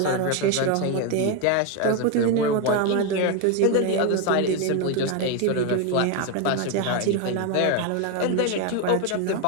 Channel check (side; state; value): both; different; correlation 0.02